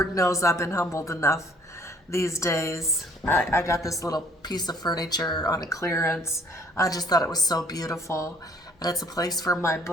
knows I've been humbled enough these days. I got this little piece of furniture on a clearance. I just thought it was so beautiful. And it's a place for my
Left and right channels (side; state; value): both; normal; correlation 0.58